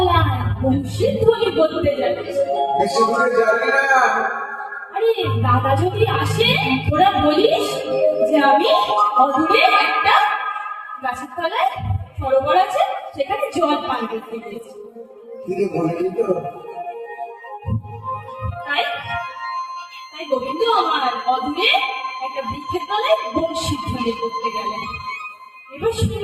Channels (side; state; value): both; identical; correlation 1.00